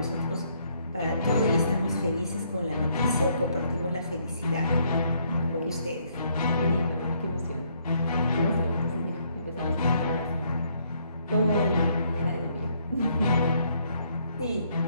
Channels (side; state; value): both; inverted; correlation -0.69